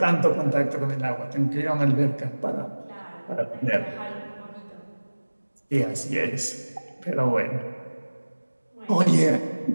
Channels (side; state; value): both; inverted; correlation -1.00